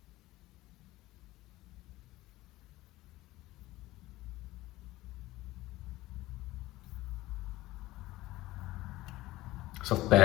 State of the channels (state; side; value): quieter; right; 17.7 dB